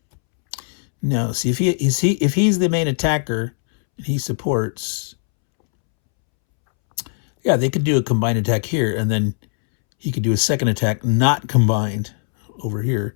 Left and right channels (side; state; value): right; silent; 66 dB below the other